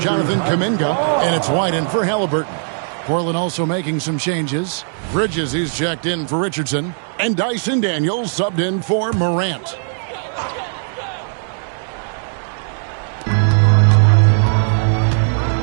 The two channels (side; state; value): left; silent; 67 dB below the other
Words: Kuminga, and it's White in for Halliburton. Portland also making some changes. Bridges, he's checked in for Richardson, and Dyson Daniels subbed in for Morant.